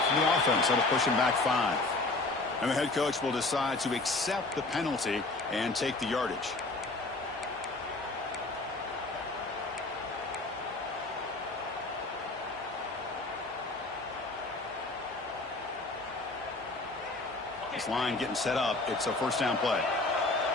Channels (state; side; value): quieter; right; 3.2 dB